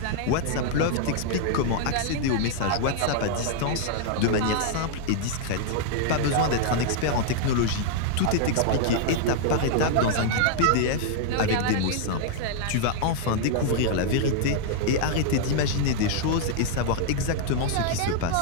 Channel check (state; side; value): different; both; correlation -0.01